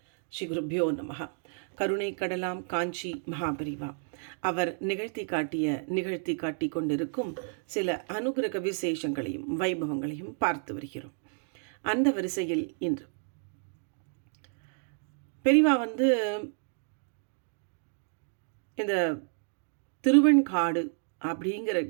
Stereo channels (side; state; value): left; silent; 57 dB below the other